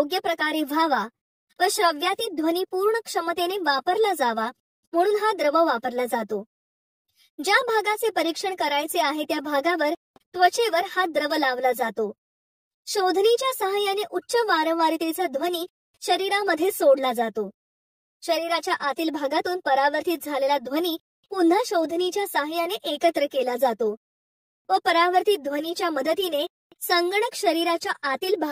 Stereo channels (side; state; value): both; identical; correlation 1.00